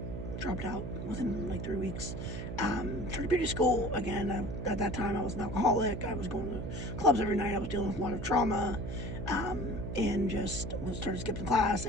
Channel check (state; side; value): noise; right; hum, 6 dB below the sound